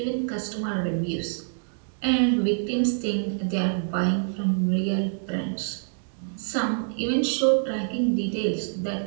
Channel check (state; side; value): silent; left; digital silence